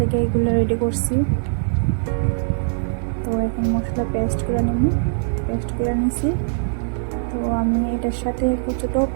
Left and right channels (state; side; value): silent; left; digital silence